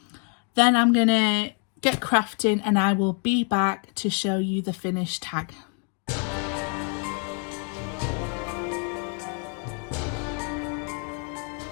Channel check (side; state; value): right; quieter; 39.8 dB